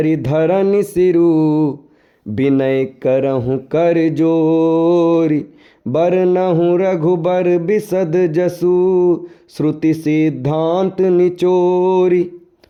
धरन सिरु, विनय करहु कर जोरी। बरनहु रघुबर बिसद जसु, श्रुति सिद्धांत निचोरी।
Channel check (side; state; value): both; identical; correlation 1.00